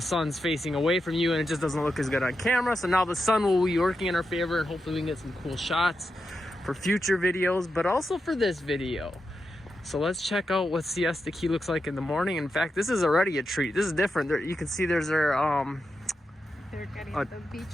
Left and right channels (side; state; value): both; normal; correlation 0.87